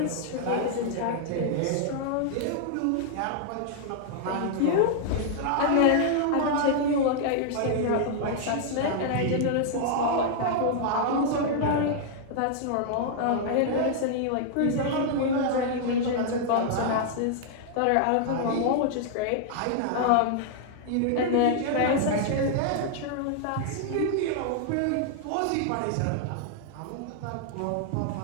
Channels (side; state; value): both; different; correlation -0.01